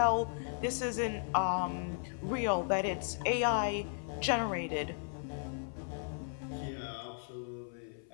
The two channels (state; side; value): silent; right; 54 dB below the other